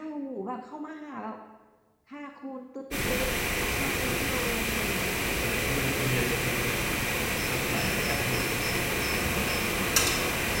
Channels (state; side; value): identical; both; correlation 1.00